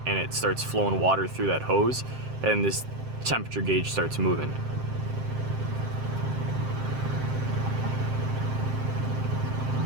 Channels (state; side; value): late; left; 7.6 ms